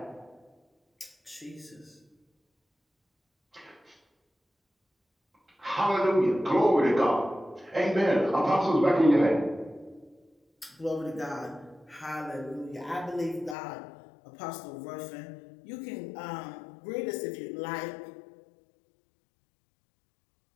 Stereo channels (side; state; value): right; drops out; at 13.6 s